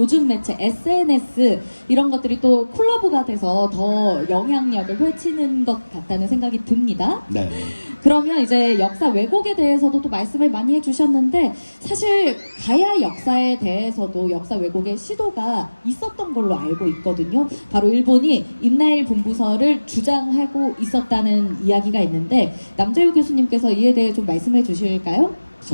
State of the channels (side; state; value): both; inverted; correlation -1.00